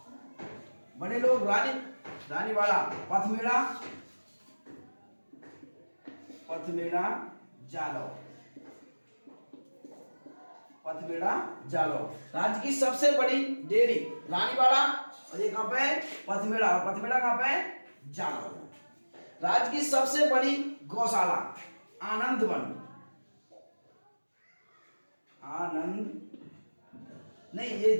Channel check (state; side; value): inverted; both; correlation -1.00